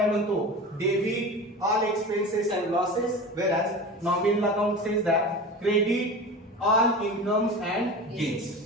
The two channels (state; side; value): normal; both; correlation 0.32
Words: म्हणतो? Debit all expenses and losses, whereas nominal account says that credit all incomes and